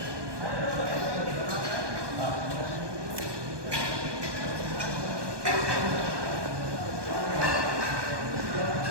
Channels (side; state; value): left; late; 1.2 ms